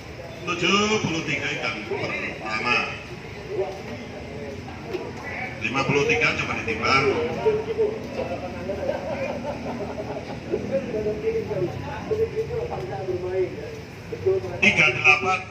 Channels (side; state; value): both; identical; correlation 1.00